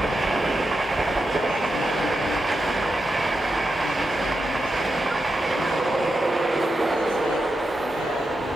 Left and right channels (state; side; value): normal; both; correlation 0.88